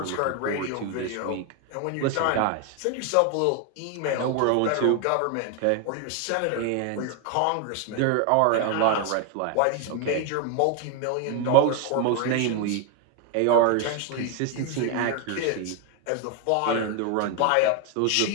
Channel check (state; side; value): different; both; correlation 0.01